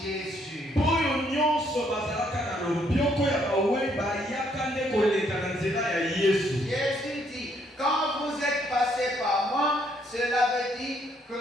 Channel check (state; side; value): normal; both; correlation 0.70